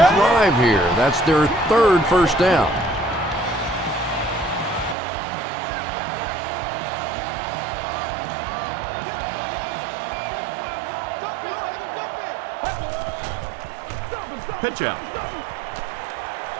here. That's their third first down. Pitch out.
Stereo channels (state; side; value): drops out; left; at 5.0 s